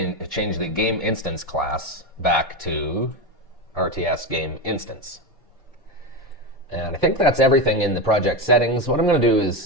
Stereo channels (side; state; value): both; normal; correlation 0.16